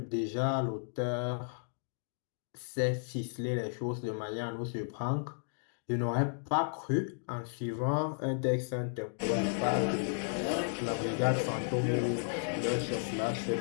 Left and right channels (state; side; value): silent; right; digital silence